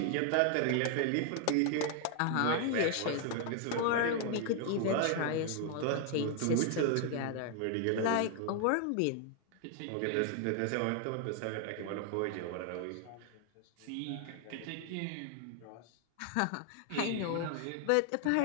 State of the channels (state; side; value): different; both; correlation 0.00